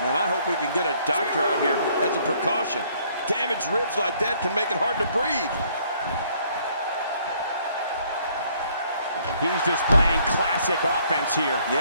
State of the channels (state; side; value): inverted; both; correlation -0.64